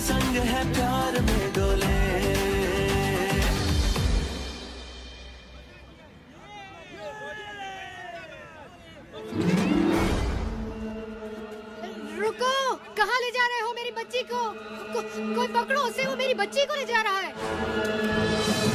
संग है प्यार में डोले। रुको, कहाँ ले जा रहे हो मेरी बच्ची को? कोई पकड़ो उसे, वो मेरी बच्ची को ले जा रहा है।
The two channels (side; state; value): both; identical; correlation 1.00